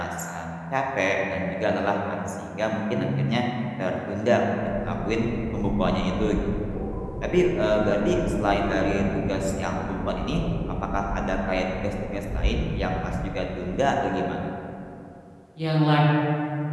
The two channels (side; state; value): both; identical; correlation 1.00